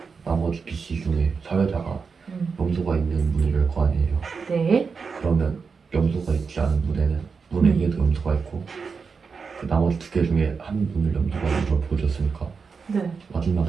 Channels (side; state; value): left; quieter; 5.3 dB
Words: 나머지 B, C 중에 사회자가 염소가 있는 문을 열 거 아니에요. 네. 그러면 염소가 있지 않은 문에는 문 A에도 염소가 있고 그 나머지 두 개 중에 한 문을 염소가 있는 걸 보여줬으니까 네.